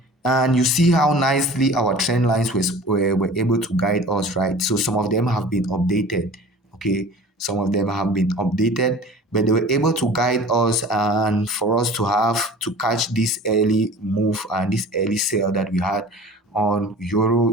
And you see how nicely our trend lines were able to guide us, right? So some of them have been updated, okay? Some of them have been updated, but they were able to guide us and for us to have to catch this early move and this early sale that we had on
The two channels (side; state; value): both; normal; correlation 0.42